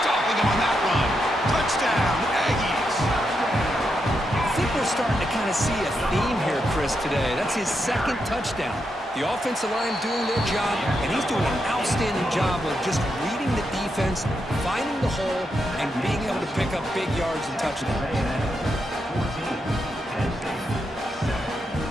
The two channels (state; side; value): normal; both; correlation 0.83